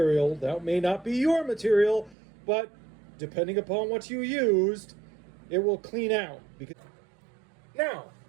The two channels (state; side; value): drops out; left; at 2.1 s